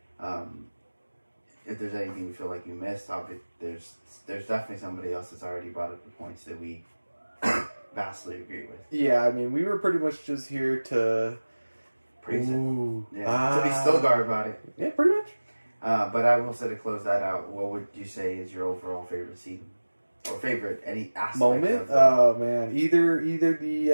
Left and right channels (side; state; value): both; inverted; correlation -1.00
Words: if there's anything we feel like you missed, there's definitely somebody else that's already brought up the points that we vastly agree with. Yeah, I mean, we were pretty much just here to praise it. Yeah, to be still guard about it. Yeah, pretty much. But I will say to close that out, what would you say is your overall favorite scene? Or favorite any aspect moment? Oh man, either